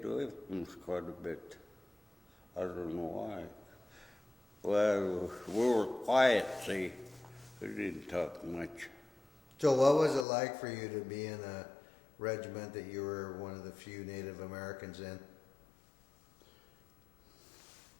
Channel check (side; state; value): right; drops out; at 10.2 s